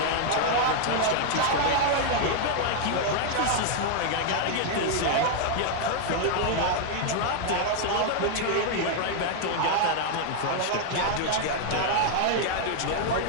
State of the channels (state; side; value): different; both; correlation 0.00